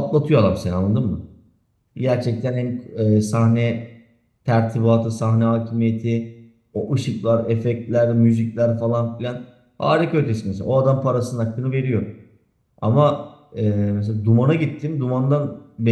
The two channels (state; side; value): identical; both; correlation 1.00